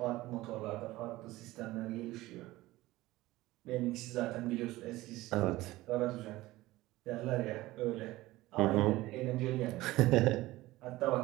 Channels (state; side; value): quieter; left; 18.1 dB